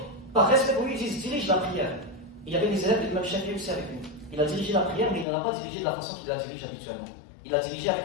Par respect pour lui, ils dirigent la prière. Il y avait les élèves de l'imam Shafi'i aussi avec lui. Il a dirigé la prière, mais il ne l'a pas dirigé de la façon qu'il la dirige habituellement. Il a dirigé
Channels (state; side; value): drops out; right; at 5.2 s